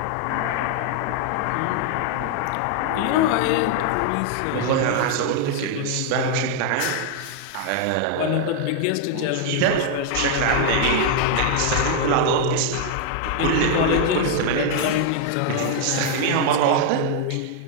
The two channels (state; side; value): different; both; correlation 0.00